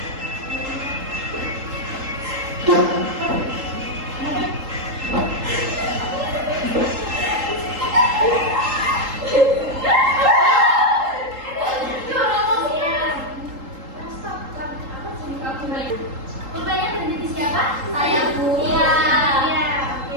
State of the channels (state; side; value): late; left; 3.8 ms